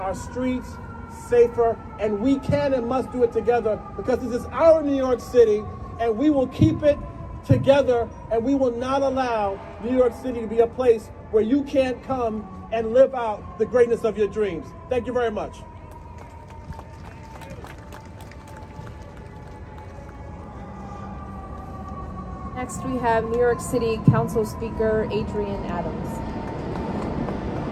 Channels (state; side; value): identical; both; correlation 1.00